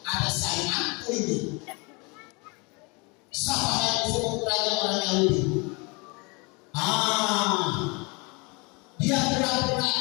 Ada sainganku ini. Siapa yang disebut raja orang Yahudi? Dia pura-pura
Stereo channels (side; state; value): right; quieter; 29.1 dB